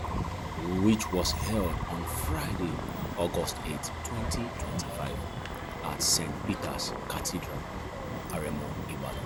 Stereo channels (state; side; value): identical; both; correlation 1.00